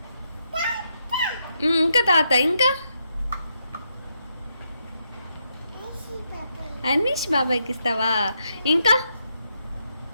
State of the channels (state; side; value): inverted; both; correlation -0.80